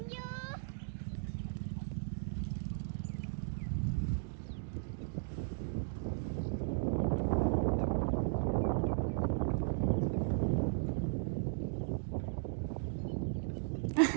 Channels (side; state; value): left; silent; digital silence